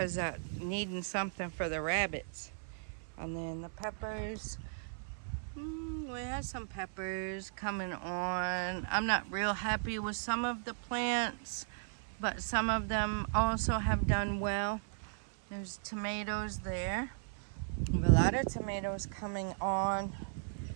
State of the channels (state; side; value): silent; left; 53 dB below the other